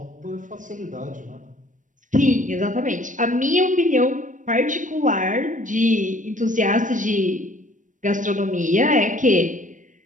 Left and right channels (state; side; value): late; left; 0.37 ms